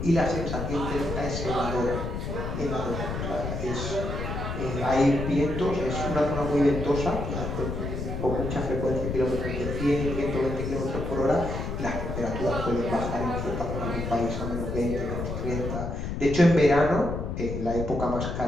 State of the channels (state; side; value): noise; left; rumble, 4 dB below the sound